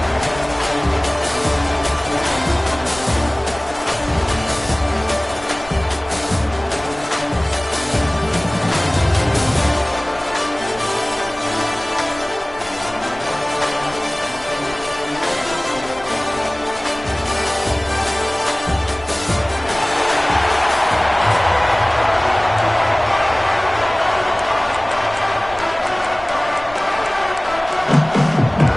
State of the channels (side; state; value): left; noise; rumble, 19 dB below the sound